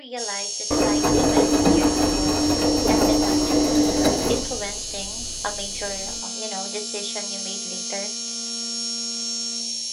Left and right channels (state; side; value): identical; both; correlation 1.00